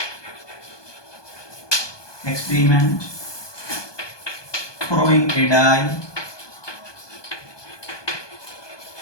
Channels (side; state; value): right; late; 1.2 ms